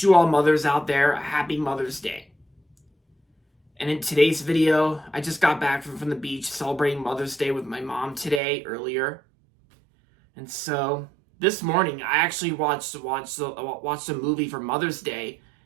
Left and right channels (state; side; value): drops out; left; at 8.4 s